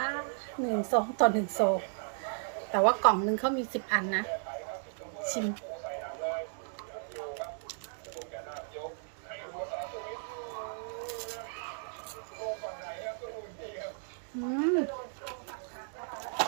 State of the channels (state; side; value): silent; left; digital silence